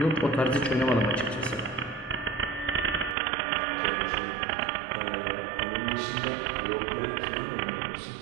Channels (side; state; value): left; drops out; at 3.2 s